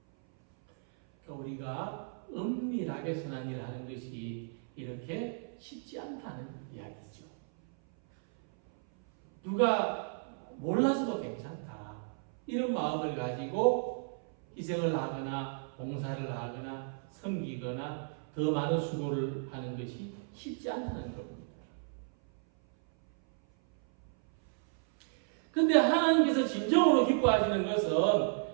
그러니까 우리가 은밀하게 선한 일을 하는 것이 이렇게 쉽지 않다는 이야기죠. 누가 몰라서도 괜찮다. 이런 마음을 가지고 희생을 하거나 봉사를 하거나 섬기거나 더 많은 수고를 하는 것이 쉽지 않다는 겁니다. 근데 하나님께서 진정으로 기뻐하시는 것은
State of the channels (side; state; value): left; silent; 55 dB below the other